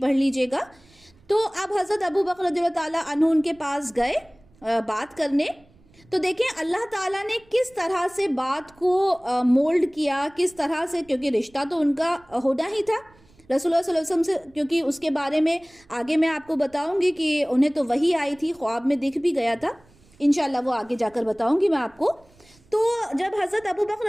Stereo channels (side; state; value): right; noise; rumble, 29 dB below the sound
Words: لیجئے گا۔ تو اب حضرت ابو بکر رضی اللہ تعالیٰ عنہ ان کے پاس گئے بات کرنے۔ تو دیکھیں اللہ تعالیٰ نے کس طرح سے بات کو مولڈ کیا، کس طرح سے، کیونکہ رشتہ تو ان کا ہونا ہی تھا رسول اللہ صلی اللہ علیہ وسلم سے، کیونکہ اس کے بارے میں آگے میں آپ کو بتاؤں گی کہ انہیں تو وحی آئی تھی، خواب میں دکھ بھی گیا تھا، انشاءاللہ وہ آگے جا کر بتاؤں گی میں آپ کو۔ تو جب حضرت ابو بکر